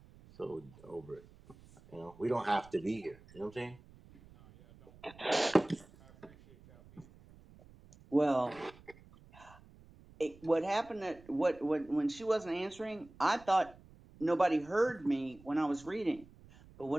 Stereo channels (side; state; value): right; noise; rumble, 23 dB below the sound